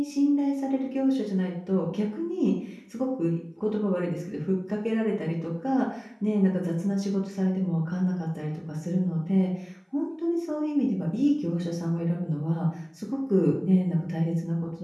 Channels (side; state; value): both; identical; correlation 1.00